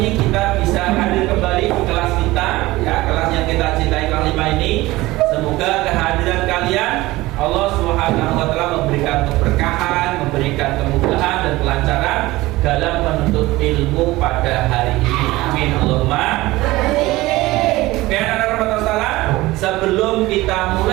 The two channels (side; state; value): left; quieter; 19.0 dB